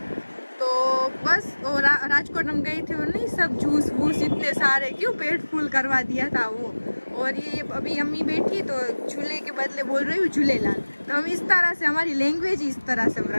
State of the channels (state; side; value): inverted; both; correlation -1.00